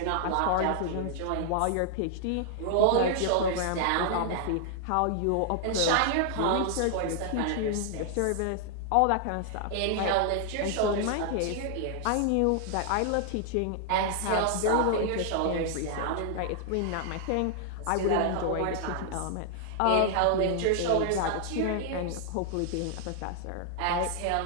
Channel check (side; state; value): both; different; correlation 0.00